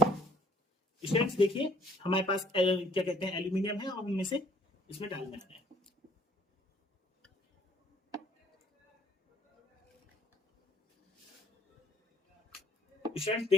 स्टूडेंट्स देखिए, हमारे पास क्या कहते हैं, एल्यूमिनियम है और हमें से इसमें डालना है। स्टूडेंट्स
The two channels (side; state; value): both; normal; correlation 0.58